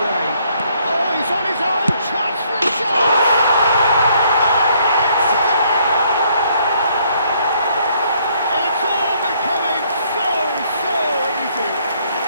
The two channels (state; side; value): inverted; both; correlation -0.67